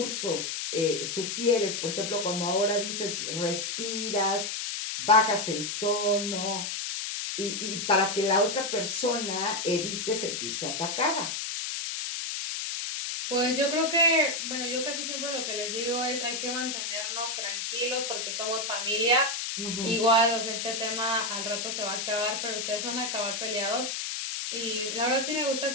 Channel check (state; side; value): noise; left; hiss, 3 dB below the sound